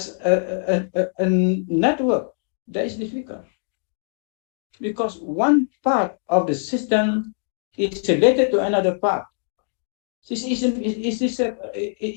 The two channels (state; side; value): silent; right; digital silence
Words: a network, that is difficult. Because one part of the system is related to another part. It's